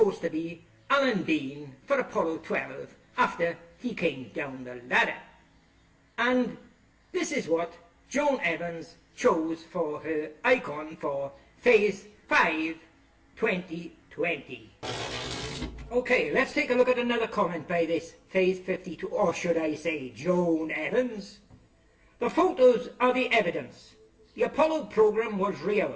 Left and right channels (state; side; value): identical; both; correlation 1.00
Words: to be Alan Bean for Apollo 12 after he came down the ladder. And this is what Joan Evans chose for her icon for Phase 5 2020. Okay, let's take a look at another comment by this Phase 52, or should I say Joan Evans. The photos are the evidence. The Apollo program was